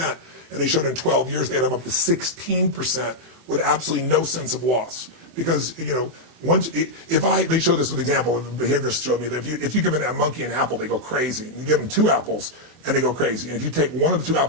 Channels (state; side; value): late; left; 24 ms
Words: and they showed in 12 years they had them up to 16% with absolutely no sense of loss. Because, they show this with example, the behaviorists showed me that if you give a monkey an apple, they go crazy. And you give them 2 apples, and they go crazy. And if you take one of the 2